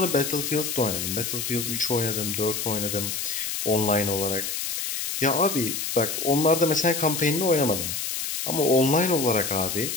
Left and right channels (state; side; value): noise; left; hiss, 3 dB below the sound